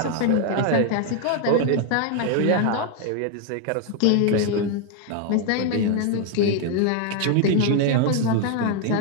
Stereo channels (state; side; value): different; both; correlation 0.01